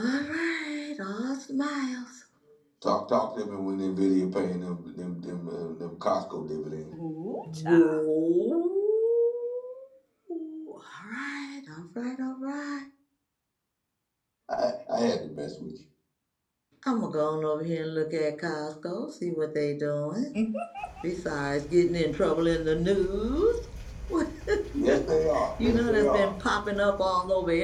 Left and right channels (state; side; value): identical; both; correlation 1.00